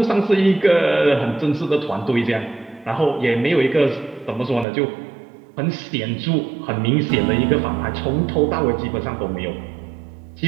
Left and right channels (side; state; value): left; drops out; at 4.7 s